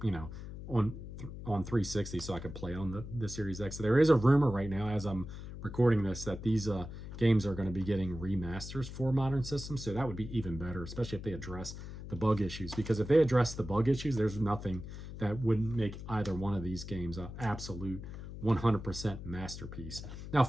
on 360, so I could play on the Series X. So there is a rumor right now, as I'm recording this, that these games are going to be getting remasters for modern systems. So that would be even better, especially if they address the bug issues, because if they address the bug issues, there's nothing that wouldn't make either one of these games an absolute 100% masterpiece. Now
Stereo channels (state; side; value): noise; left; hum, 10 dB below the sound